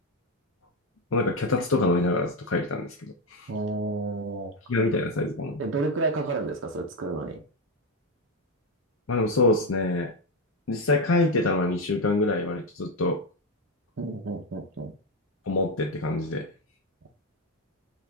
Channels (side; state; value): both; normal; correlation 0.10